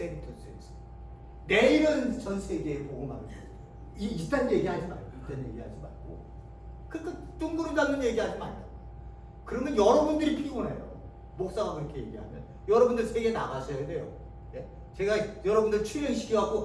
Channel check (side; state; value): both; identical; correlation 1.00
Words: 내일은 전 세계에 복음하는 거예요. 이딴 얘기하지 말고, 그러니까 둥그름 잡는 얘기하지 말고. 그러면 여러분들이 피곤해요. 목사가 그렇게 얘기하면 여러분들 세계 나가셔야 돼요. 예? 제가 여러분들